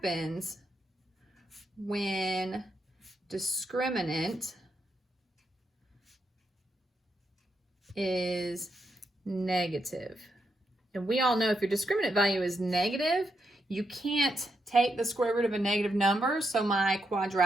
when discriminant is negative. And we all know if your discriminant value is negative, you can't take the square root of a negative number, so my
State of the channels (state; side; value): normal; both; correlation 0.82